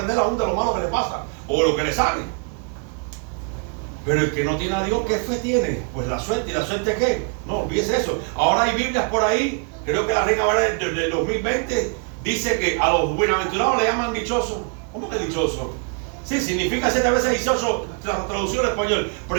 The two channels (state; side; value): quieter; left; 37.9 dB